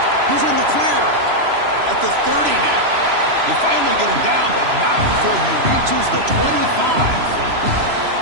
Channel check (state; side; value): late; left; 3.0 ms